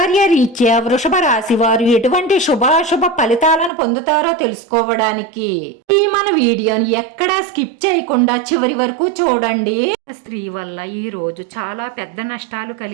రీత్యా వృషభ రాశి వారు ఎటువంటి శుభాశుభ ఫలితాలను పొందుతారో తెలుసుకోవడానికి ఈ మన వీడియోని ఎక్కడా స్కిప్ చేయకుండా చివరి వరకు చూడండి. స్త్రీ వల్ల ఈ రోజు చాలా పెద్ద నష్టాలు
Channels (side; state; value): left; drops out; at 3.7 s